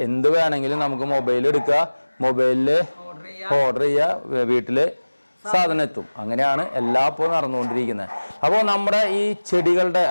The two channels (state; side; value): inverted; both; correlation -1.00